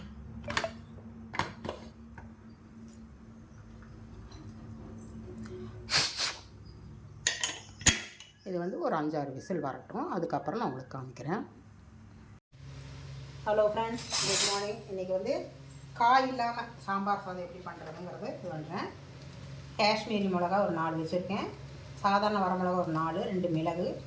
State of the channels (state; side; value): identical; both; correlation 1.00